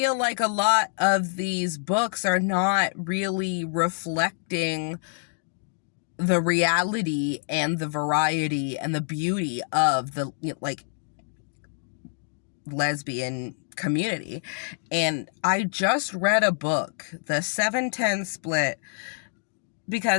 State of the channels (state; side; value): silent; right; digital silence